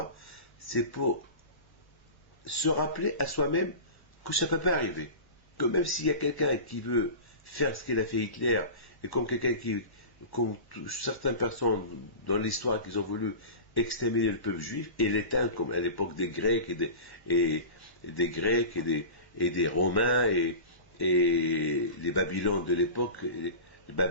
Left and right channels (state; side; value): late; right; 1.1 ms